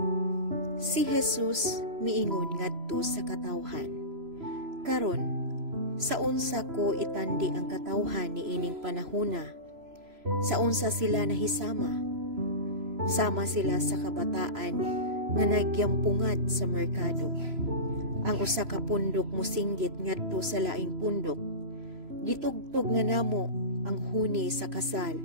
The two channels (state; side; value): late; left; 3.0 ms